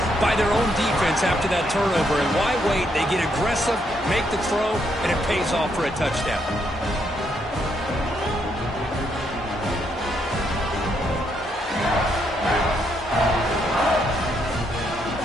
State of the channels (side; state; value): both; normal; correlation 0.76